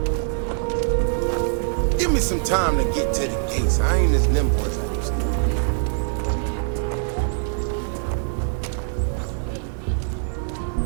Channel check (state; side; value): silent; left; digital silence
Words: Give me some time to get to the gates. I ain't as nimble as I used to.